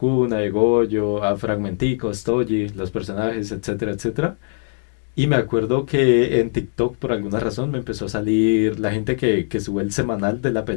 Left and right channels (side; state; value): right; silent; digital silence